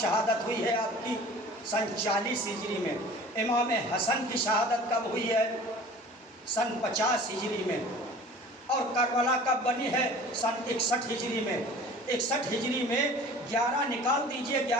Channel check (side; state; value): both; normal; correlation 0.44